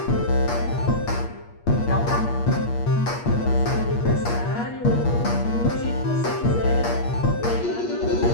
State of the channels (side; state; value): right; late; 8.5 ms